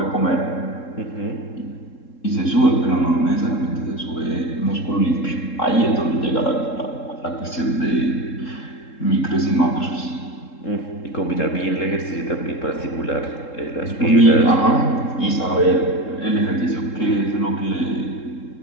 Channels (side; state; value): right; late; 3.7 ms